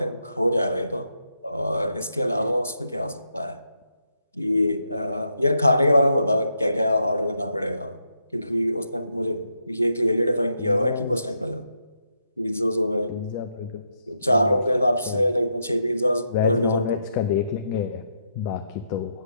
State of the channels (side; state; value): both; inverted; correlation -0.81